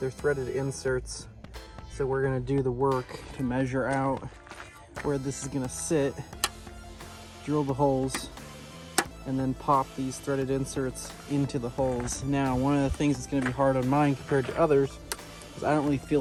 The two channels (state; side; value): identical; both; correlation 1.00